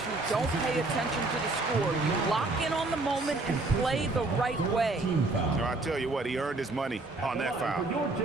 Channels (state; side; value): quieter; left; 3.2 dB